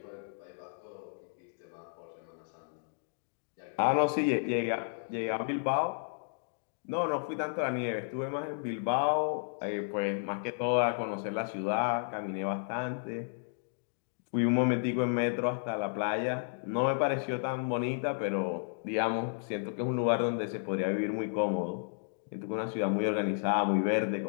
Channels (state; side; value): silent; right; digital silence